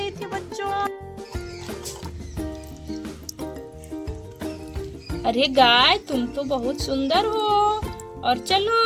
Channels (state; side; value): identical; both; correlation 1.00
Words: थी बच्चों। अरे गाय तुम तो बहुत सुंदर हो, और